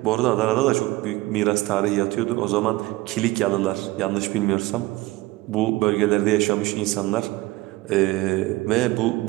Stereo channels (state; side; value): quieter; left; 19.4 dB